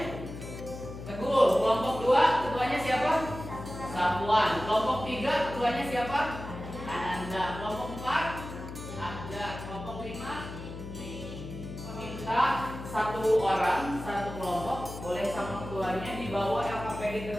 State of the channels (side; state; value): left; noise; hum, 10 dB below the sound